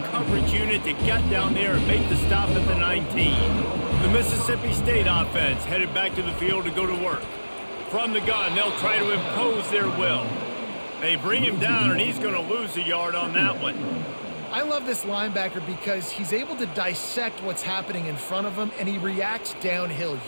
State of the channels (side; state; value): both; inverted; correlation -1.00